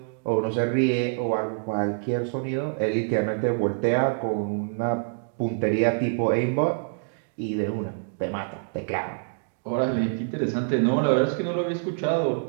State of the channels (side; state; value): left; silent; digital silence